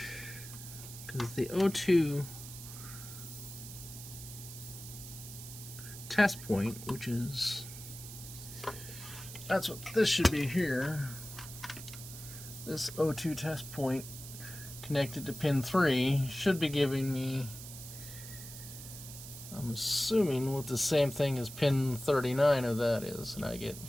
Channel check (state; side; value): noise; right; hiss, 13 dB below the sound